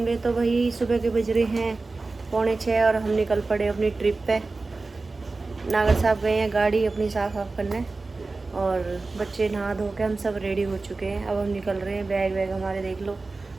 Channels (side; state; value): left; quieter; 3.6 dB